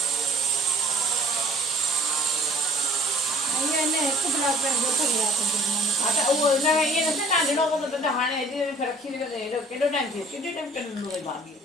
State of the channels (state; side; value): normal; both; correlation 0.53